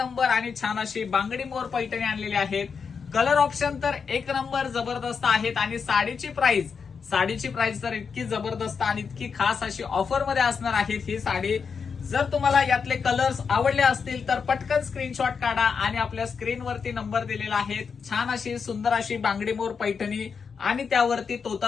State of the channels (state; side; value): quieter; right; 5.9 dB